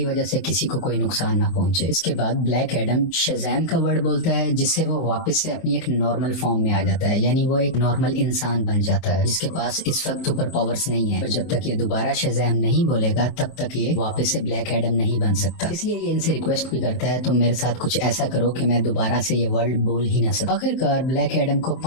वजह से किसी को कोई नुकसान ना पहुंचे। इसके बाद ब्लैक एडम शज़ैम का वर्ड बोलता है, जिससे वो वापस से अपनी एक नॉर्मल फॉर्म में आ जाता है, यानी वो एक नॉर्मल इंसान बन जाता है जिसके पास इस वक्त सुपर पावर्स नहीं है। और जब तक ये दोबारा शज़ैम नहीं बोलेगा तब तक ये वापस से ब्लैक एडम नहीं बन सकता। इसलिए ये इनसे रिक्वेस्ट भी करता है, तुम मेरे साथ कुछ ऐसा करो कि मैं दोबारा से ये वर्ड बोल ही ना सकूं। आखिरकार ब्लैक एडम को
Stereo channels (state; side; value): late; right; 24 ms